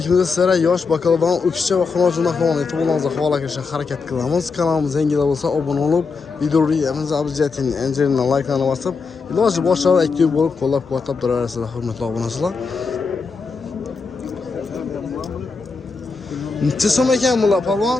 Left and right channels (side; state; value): right; quieter; 4.7 dB